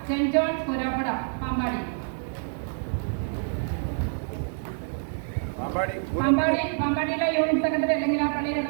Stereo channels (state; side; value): silent; left; digital silence